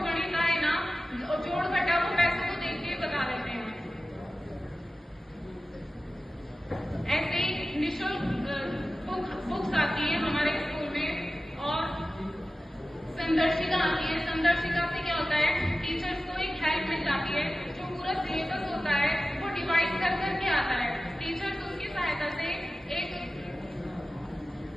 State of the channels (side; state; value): both; normal; correlation 0.94